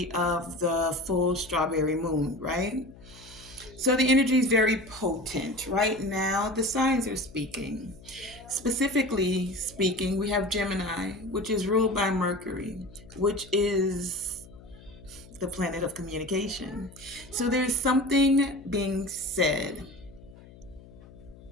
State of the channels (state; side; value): noise; left; hum, 21 dB below the sound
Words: of the full strawberry moon, right? So the energy is very potent. Right now, the signs are speaking. Specifically speaking, we have Gemini, which is ruled by Mercury, which is the planet of communication. So there's something being said